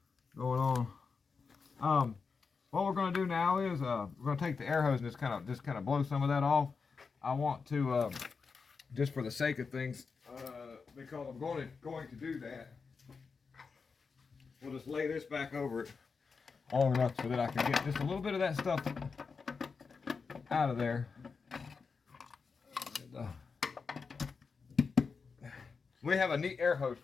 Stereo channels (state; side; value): quieter; right; 5.1 dB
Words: going on. What we're going to do now is we're going to take the air hose and just kind of blow some of that off. I want to just for the sake of things, because I'm going to do that. We'll just lay this back over it long enough so that I can get just a little bit of that stuff out of there. And, we have a neat air hose